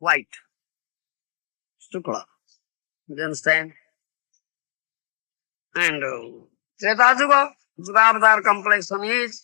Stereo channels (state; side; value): silent; right; digital silence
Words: Sukla. You understand? And Treta Yuga, Yugavatar complexion